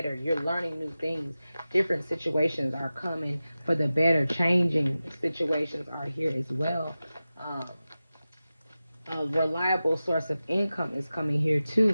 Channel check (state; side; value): inverted; both; correlation -0.95